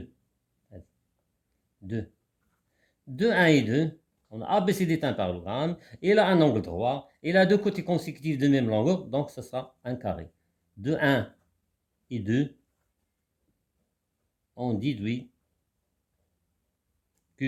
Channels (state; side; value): identical; both; correlation 1.00